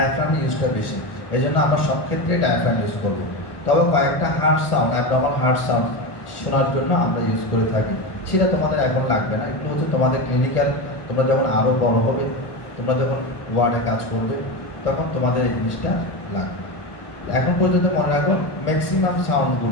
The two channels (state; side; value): late; right; 1.2 ms